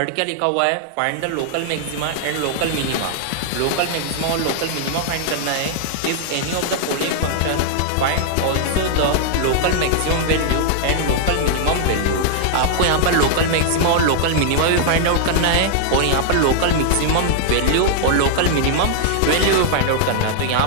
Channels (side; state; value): both; different; correlation -0.01